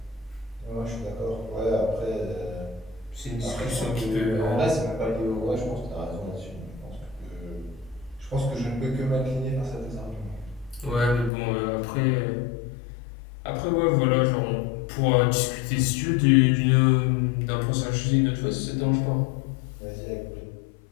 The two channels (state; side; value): drops out; right; at 11.3 s